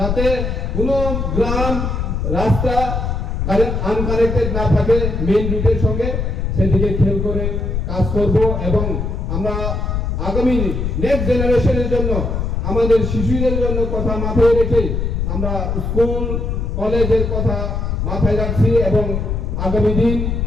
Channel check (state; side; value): noise; left; rumble, 1 dB below the sound